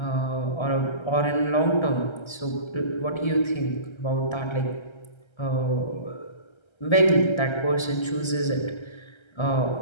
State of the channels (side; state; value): right; late; 1.3 ms